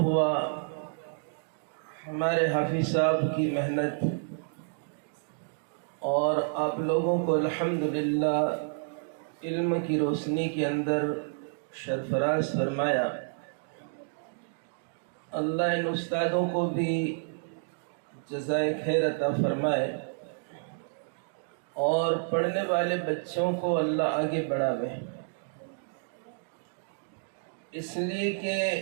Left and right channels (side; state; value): left; silent; digital silence